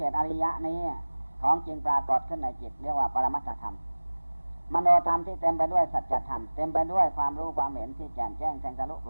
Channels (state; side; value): inverted; both; correlation -1.00